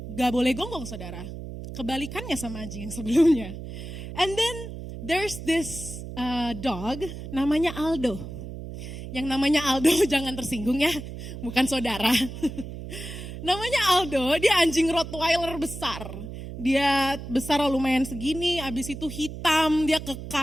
gak boleh gonggong saudara. Kebalikannya sama anjing yang sebelumnya. And then there's this dog namanya Aldo. Yang namanya Aldo jangan tersinggung ya, bukan saudara. Namanya Aldo, dia anjing Rottweiler besar. Dia besar lumayan segini, abis itu hitam, dia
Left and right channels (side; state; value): right; noise; hum, 10 dB below the sound